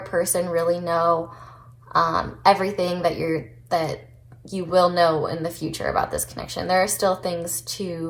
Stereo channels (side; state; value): both; identical; correlation 1.00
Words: really know everything that you will know in the future about this connection. There are still things